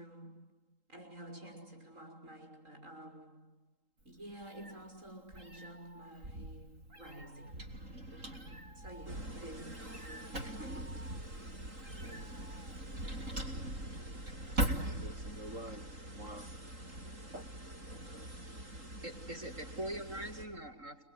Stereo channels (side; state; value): left; late; 3.8 ms